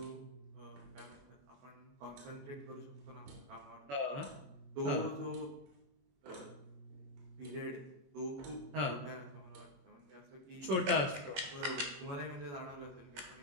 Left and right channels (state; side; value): late; left; 21 ms